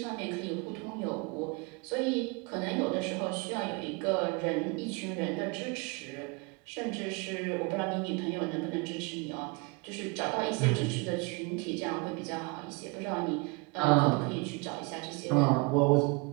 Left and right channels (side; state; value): left; quieter; 28.9 dB